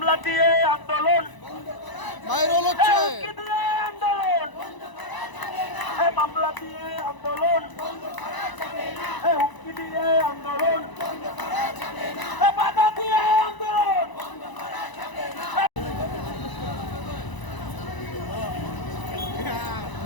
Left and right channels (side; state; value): right; late; 1.0 ms